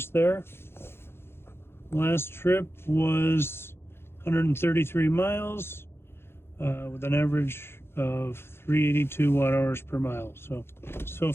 there. Last trip was 133 miles with an average of 382 watt hours per mile. So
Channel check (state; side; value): late; right; 0.11 ms